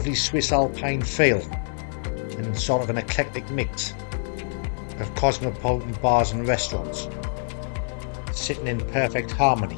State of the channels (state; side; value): silent; right; digital silence